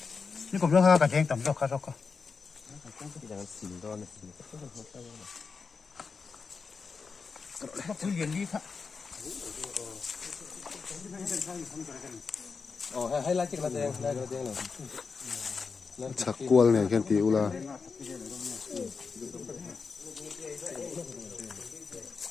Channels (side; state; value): right; quieter; 5.0 dB